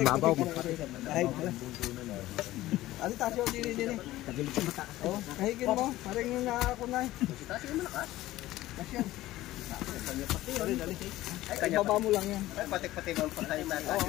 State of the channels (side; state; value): right; quieter; 16.1 dB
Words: babaw. Ano tasyo din. Oh, kahigin mo. Parang yung nakakunay. Tasyo malakas. Tasyo. Ay, baba mo lang yan. Ay, patik-patik ang patay na.